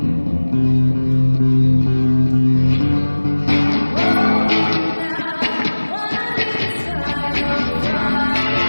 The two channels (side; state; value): both; inverted; correlation -1.00